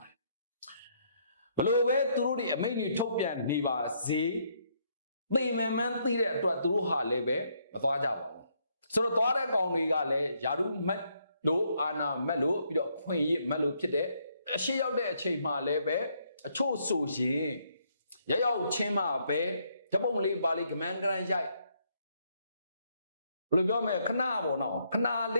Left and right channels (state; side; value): inverted; both; correlation -0.72